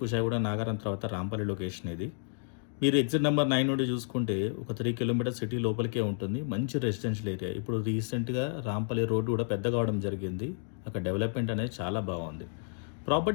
నాగారం తర్వాత రాంపల్లి లొకేషన్ ఇది. మీరు ఎగ్జిట్ నెంబర్ 9 నుండి చూసుకుంటే ఒక 3 కిలోమీటర్స్ సిటీ లోపలికే ఉంటుంది. మంచి రెసిడెన్షియల్ ఏరియా. ఇప్పుడు రీసెంట్‌గా రాంపల్లి రోడ్డు కూడా పెద్దగా అవడం జరిగింది. అక్కడ డెవలప్‌మెంట్ అనేది చాలా బాగుంది.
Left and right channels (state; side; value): silent; right; digital silence